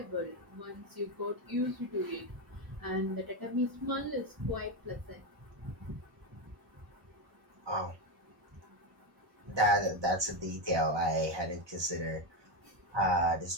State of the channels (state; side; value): late; left; 1.2 ms